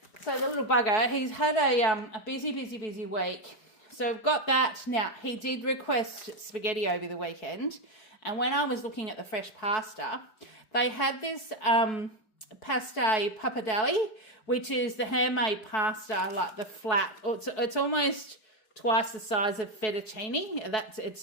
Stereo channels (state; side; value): late; right; 4.6 ms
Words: the little bugger, he's had a busy week. So we've got that. Now, he did request spaghetti over the weekend. And when I was looking at the fresh pasta, they had this pasta pappardelle, which is the handmade pasta, like the flat. It's almost twice the size of fettuccine.